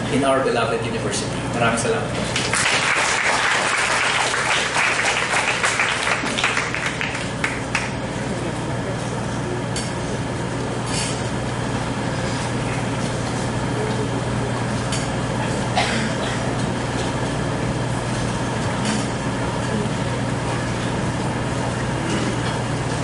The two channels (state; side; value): identical; both; correlation 1.00